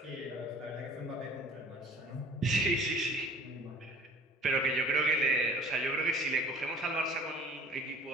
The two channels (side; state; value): both; normal; correlation 0.48